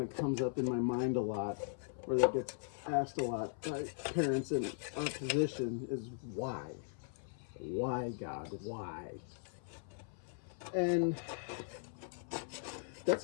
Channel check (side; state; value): right; silent; 52 dB below the other